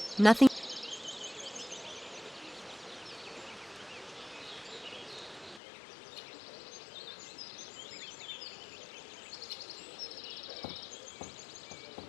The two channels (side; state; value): right; drops out; at 5.6 s